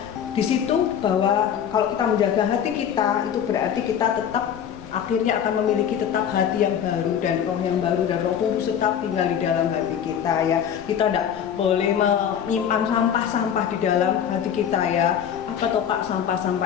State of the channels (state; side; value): quieter; right; 8.7 dB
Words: Di situ bahwa kalau kita menjaga hati kita, itu berarti kita tetap akhirnya akan memiliki tetap hati yang baru dan roh yang baru, dan Roh Kudus tetap tinggal di dalam hati kita ya. Kita tidak boleh menyimpan sampah-sampah di dalam hati kita ya. Apa toh Pak